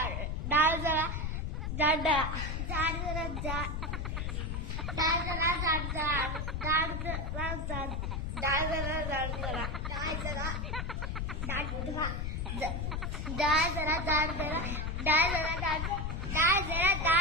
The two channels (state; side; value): noise; left; rumble, 2 dB below the sound